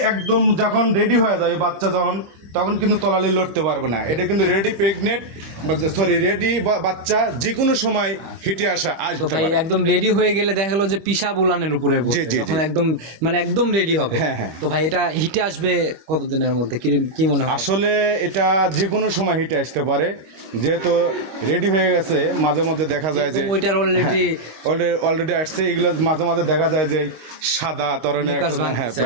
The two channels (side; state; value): left; late; 26 ms